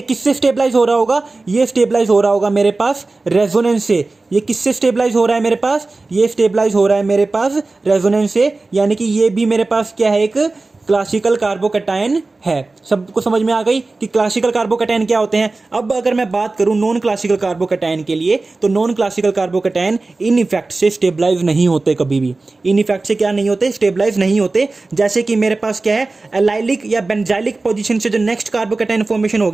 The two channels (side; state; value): left; quieter; 3.4 dB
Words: किससे स्टेबलाइज हो रहा होगा, ये स्टेबलाइज हो रहा होगा मेरे पास रेजोनेंस से। ये किससे स्टेबलाइज हो रहा है मेरे पास, ये स्टेबलाइज हो रहा है मेरे पास रेजोनेंस से, यानी कि ये भी मेरे पास क्या है, एक क्लासिकल कार्बोकैटायन है। सबको समझ में आ गई कि क्लासिकल कार्बोकैटायन क्या होते हैं। अब अगर मैं बात करूं नॉन क्लासिकल कार्बोकैटायन के लिए, तो non classical carbocation in effect से स्टेबलाइज नहीं होते, कभी भी इन इफेक्ट से क्या नहीं होते, स्टेबलाइज नहीं होते। जैसे कि मेरे पास क्या है, एलाइलिक या बेंजाइलिक पोजीशन से जो नेक्स्ट कार्बोकैटायन फॉर्मेशन हो